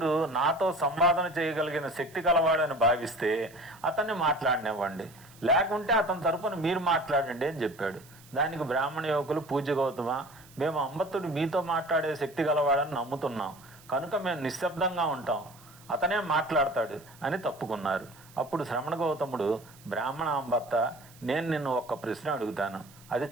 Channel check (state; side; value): noise; right; hiss, 24 dB below the sound